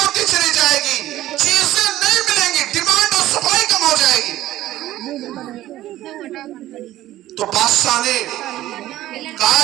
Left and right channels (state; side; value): quieter; left; 14.6 dB